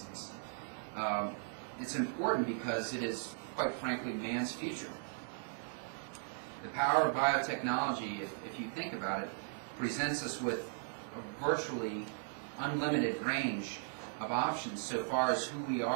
it's important because it is, quite frankly, man's future. The power of biotechnology, if you think about it, presents us with a virtually unlimited range of options so far as who we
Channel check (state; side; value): silent; left; digital silence